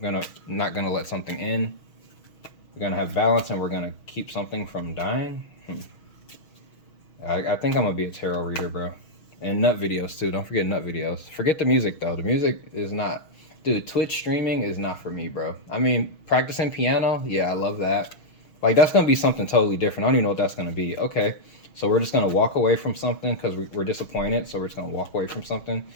not gonna let something in. We're gonna have balance, and we're gonna keep something from dying. I think I'm gonna be a tarot reader, bro. And nut videos too. Don't forget nut videos. Forget the music though. The music is not, dude. Twitch streaming is not for me, bro. I mean, practicing piano, yeah, I love that. Like, that's gonna be something totally different. I don't even know what that's gonna be. Okay, so we're just gonna walk away from something because we're disappointed. So we're just gonna walk away from something.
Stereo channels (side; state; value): right; late; 6.3 ms